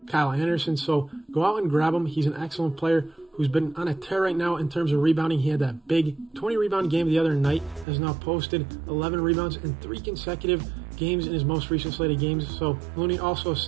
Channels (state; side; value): drops out; left; at 7.9 s